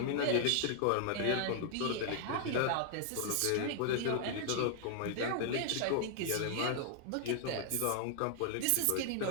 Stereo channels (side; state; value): both; different; correlation 0.00